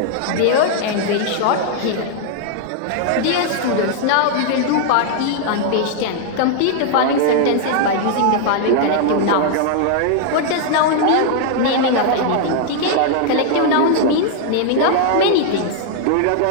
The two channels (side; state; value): both; different; correlation 0.00